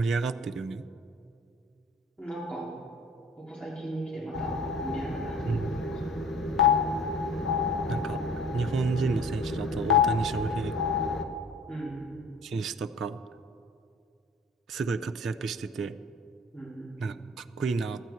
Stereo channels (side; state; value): both; normal; correlation 0.47